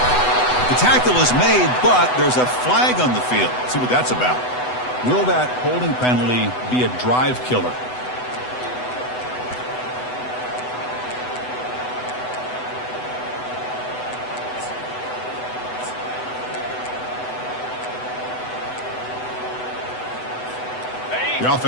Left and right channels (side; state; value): right; late; 8.0 ms